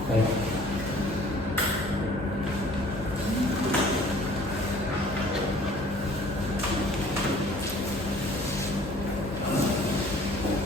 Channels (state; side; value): normal; both; correlation 0.52